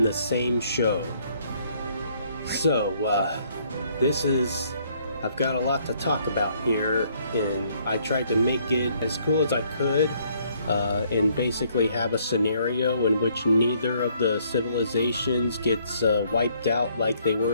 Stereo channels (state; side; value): inverted; both; correlation -0.66